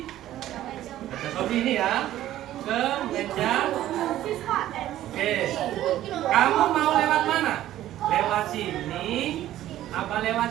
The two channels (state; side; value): quieter; left; 13.4 dB